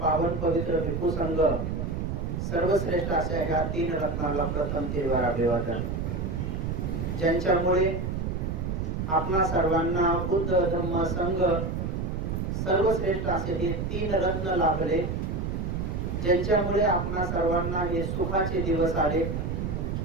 पवित्र भिक्खू संघ सर्वश्रेष्ठ अशा ह्या तीन रत्नांना प्रथम तिरवार अभिवादन। ज्यांच्यामुळे आपणा सर्वांना बुद्ध धम्म संघ सर्वश्रेष्ठ असे हे तीन रत्न लाभले, ज्यांच्यामुळे आपणा सर्वांना हे सुखाचे दिवस आले,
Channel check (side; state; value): right; noise; rumble, 2 dB below the sound